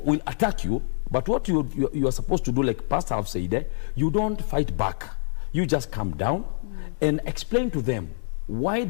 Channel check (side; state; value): right; silent; 61 dB below the other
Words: will attack you, but what you are supposed to do, like Pastor have said, you don't fight back. You just calm down and explain to them, why